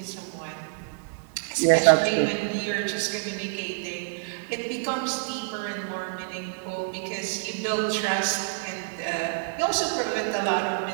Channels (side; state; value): left; silent; digital silence